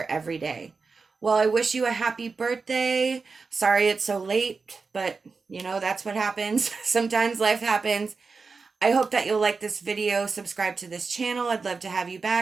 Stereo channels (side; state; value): left; quieter; 4.5 dB